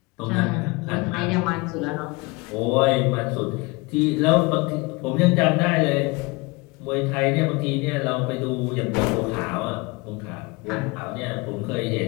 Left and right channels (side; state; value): right; quieter; 25.5 dB